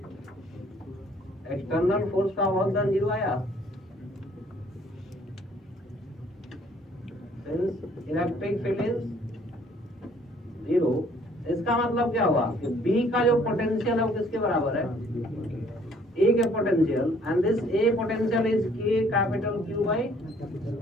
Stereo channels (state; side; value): normal; both; correlation 0.60